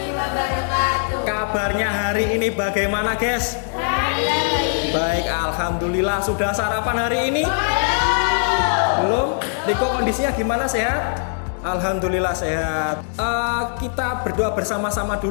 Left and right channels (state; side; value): silent; right; digital silence